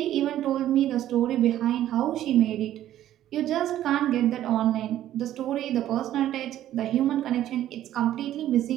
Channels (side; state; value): left; quieter; 12.5 dB